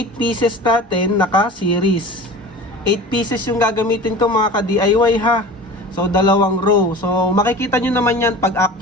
pieces natin naka-series. 8 pieces yung gagamitin ko mga ka-DIY ha. So, dalawang row. So, makikita nyo naman yan pag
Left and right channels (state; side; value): normal; both; correlation 0.37